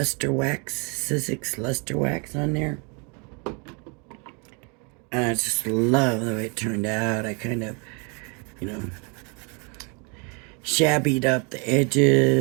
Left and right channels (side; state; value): left; quieter; 34.0 dB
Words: wax, Sizzix luster wax on there. And I just love the way it turned out. I kind of, you know, shabbied up the